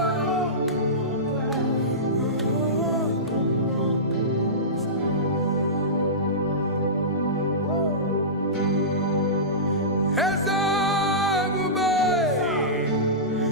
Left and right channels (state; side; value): normal; both; correlation -0.20